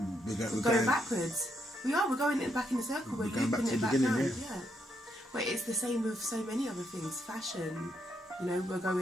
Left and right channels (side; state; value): both; normal; correlation 0.77